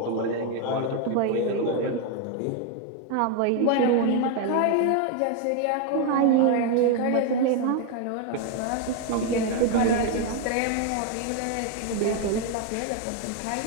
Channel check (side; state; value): both; different; correlation 0.01